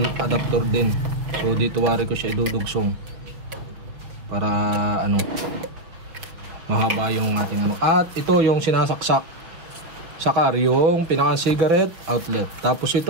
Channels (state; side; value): late; left; 5.8 ms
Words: adapter din. So dito wari ko siya idudugsong para ano, mahaba yung ating ano. At ito yung sinasaksak sakar, yung pinakang cigarette outlet. Tapos